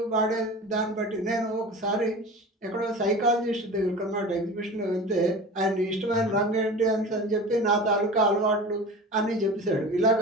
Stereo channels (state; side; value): normal; both; correlation 0.35